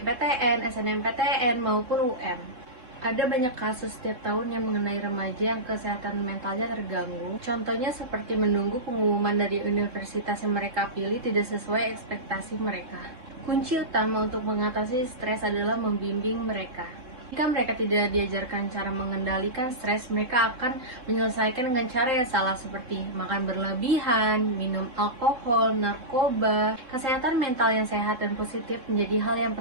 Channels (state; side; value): late; left; 3.7 ms